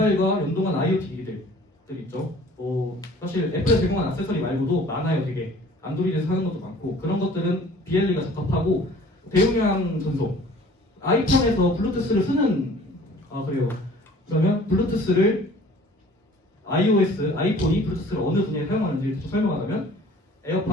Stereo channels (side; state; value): both; normal; correlation 0.50